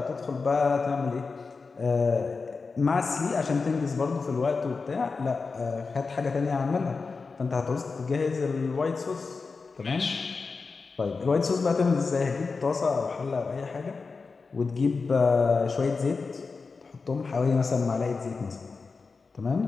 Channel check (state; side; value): quieter; right; 4.5 dB